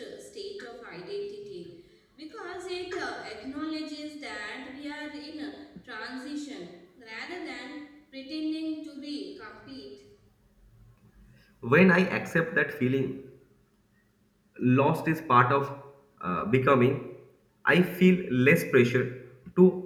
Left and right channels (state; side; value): identical; both; correlation 1.00